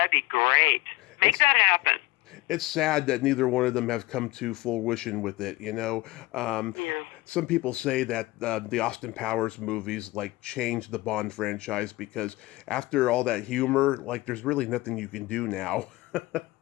be great. Make that happen. It's sad that neither one of them have come to fruition with it. You know, some people say that the Austin Powers movies like changed the Bond franchise because after all that humor, like there's really nothing you can do now.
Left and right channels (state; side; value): quieter; right; 20.0 dB